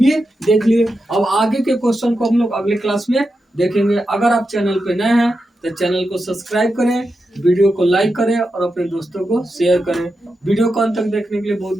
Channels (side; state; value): both; normal; correlation 0.88